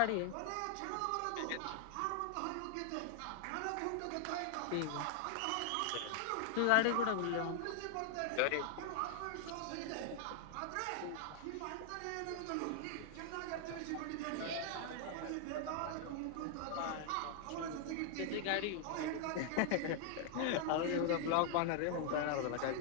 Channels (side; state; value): both; different; correlation 0.00